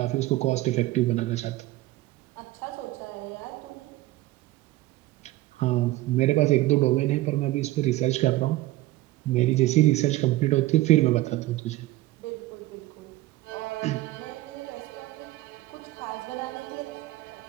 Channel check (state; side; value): quieter; left; 17.2 dB